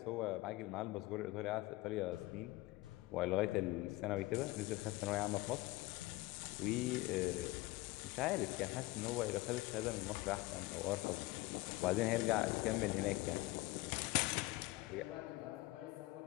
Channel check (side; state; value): right; quieter; 20.1 dB